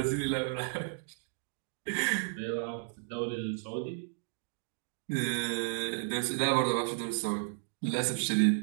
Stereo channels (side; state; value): left; silent; digital silence